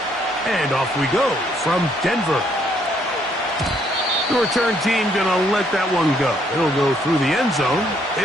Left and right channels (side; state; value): both; normal; correlation 0.69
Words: And off we go from Denver. The return team going to let that one go. It'll go through the end zone.